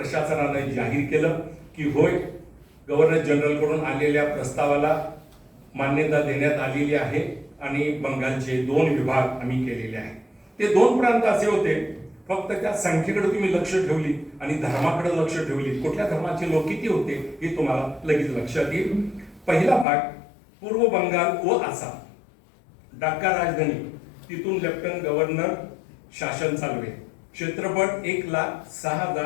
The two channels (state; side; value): drops out; right; at 19.9 s